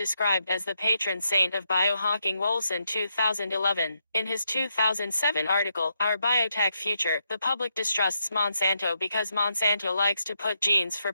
as the patron saint of biohacking. Wolson 2011. In his 2007 article, Our Biotech Future, the public distrusts Monsanto because Monsanto likes to put genes for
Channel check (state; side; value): inverted; both; correlation -0.81